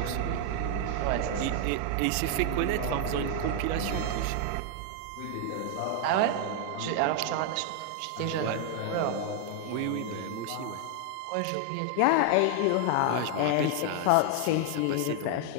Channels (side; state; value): both; different; correlation 0.00